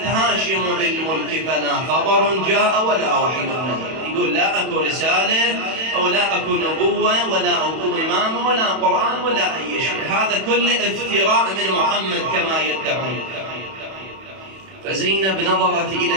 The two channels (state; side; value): late; left; 31 ms